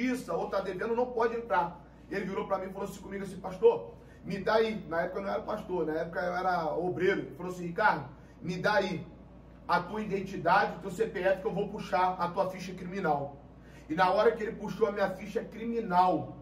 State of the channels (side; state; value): both; identical; correlation 1.00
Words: ou está devendo não pode entrar. Ele virou para mim e falou assim comigo assim, pastor, me dá aí. Na época eu não era pastor, na época eu era obreiro. Ele falou assim, Ricardo, me dá aí a tua identidade, o teu CPF, que eu vou puxar a tua ficha criminal. E na hora que ele puxou a minha ficha criminal